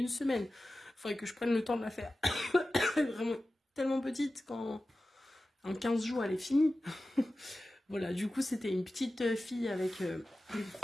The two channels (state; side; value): normal; both; correlation 0.95